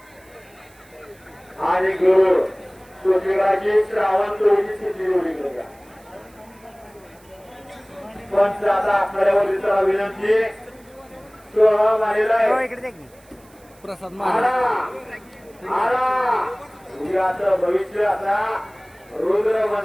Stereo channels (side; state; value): right; noise; hiss, 29 dB below the sound